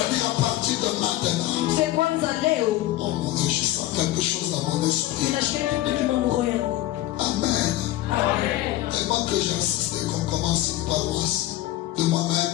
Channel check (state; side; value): quieter; right; 15.5 dB